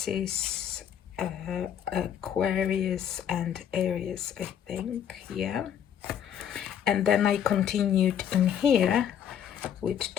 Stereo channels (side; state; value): right; quieter; 9.1 dB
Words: Aquarius and Aries, I think, yeah. And then I continued in here with